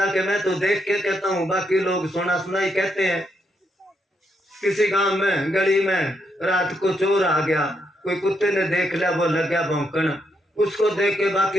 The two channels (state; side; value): normal; both; correlation 0.78